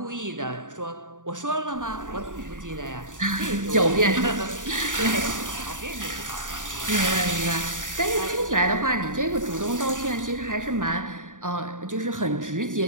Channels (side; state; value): left; late; 0.88 ms